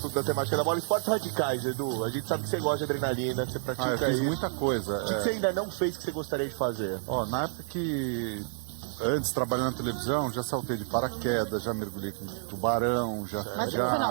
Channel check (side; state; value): left; silent; 58 dB below the other